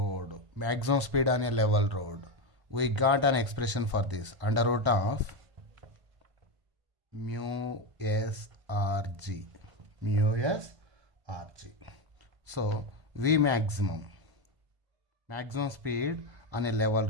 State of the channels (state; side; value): late; left; 1.0 ms